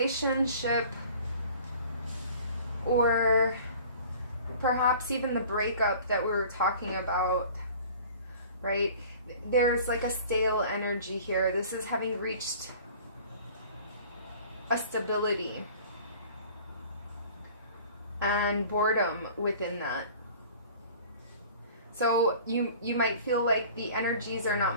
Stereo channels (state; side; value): inverted; both; correlation -0.47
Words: or perhaps even the breakup that we were talking about, right? There's like a stale energy here. This is having reached a stability and boredom within that. So you might feel like the energies are not